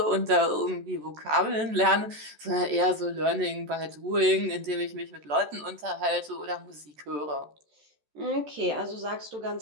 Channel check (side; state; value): left; late; 14 ms